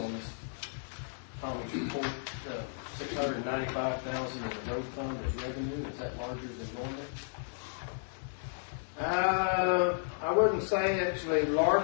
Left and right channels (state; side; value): silent; right; 55 dB below the other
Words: this Thomas report. The $695,000 in the road fund as revenue, is that larger than normal? I wouldn't say actually